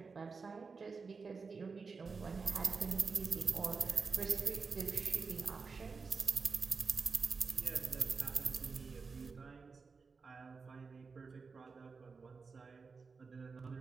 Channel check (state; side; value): quieter; left; 4.8 dB